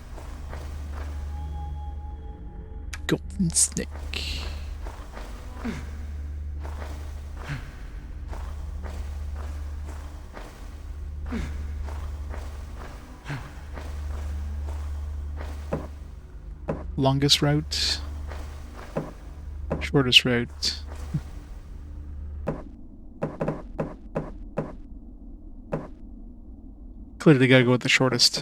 Golden Snake. Longest route. Shortest route. Clearly gotta go with the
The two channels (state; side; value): identical; both; correlation 1.00